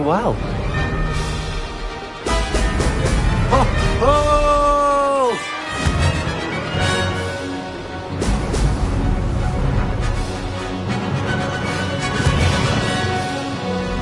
well. Oh! Oh!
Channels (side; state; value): both; identical; correlation 1.00